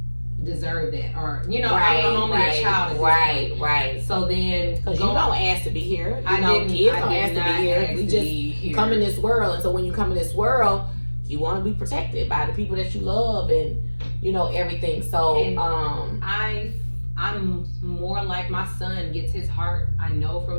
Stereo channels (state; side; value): inverted; both; correlation -1.00